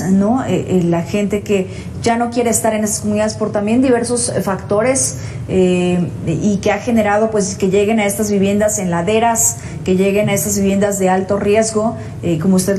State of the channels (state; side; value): identical; both; correlation 1.00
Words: ¿no? La gente que ya no quiere estar en esas comunidades por también diversos factores, y que ha generado pues que lleguen a estas viviendas en laderas, que lleguen a estas viviendas de alto riesgo, como usted